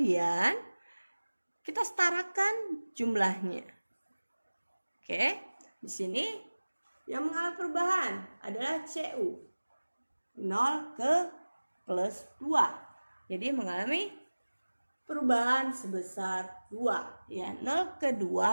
kita setarakan jumlahnya. Oke, di sini yang mengalami perubahan adalah Cu 0 ke plus 2. Jadi mengalami perubahan sebesar 2. Ya, 0 ke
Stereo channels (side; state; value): both; inverted; correlation -1.00